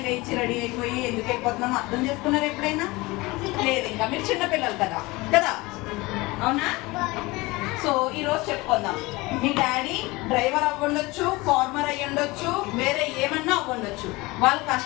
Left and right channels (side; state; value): right; quieter; 22.4 dB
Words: లేచి రెడీ అయిపోయి ఎందుకు వెళ్ళిపోతున్నాం అర్థం చేసుకున్నారు ఎప్పుడైనా? లేదు, ఇంకా మీరు చిన్నపిల్లలు కదా కదా, అవునా? సో ఈరోజు చెప్పుకుందాం. మీ డాడీ డ్రైవర్ అవ్వండొచ్చు, ఫార్మర్ అయ్యి ఉండొచ్చు, వేరే ఏమన్నా అవ్వండొచ్చు. వాళ్ళు